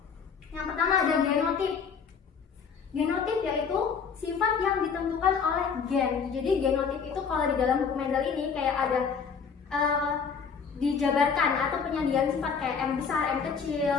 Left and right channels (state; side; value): quieter; right; 6.1 dB